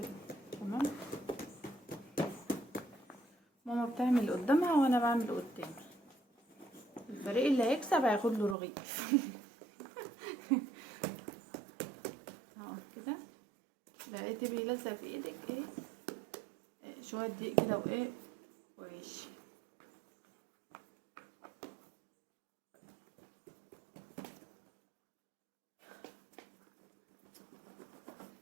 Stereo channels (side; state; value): left; drops out; at 8.6 s